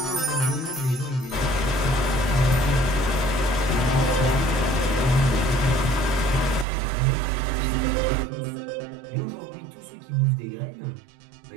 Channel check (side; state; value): left; drops out; at 6.7 s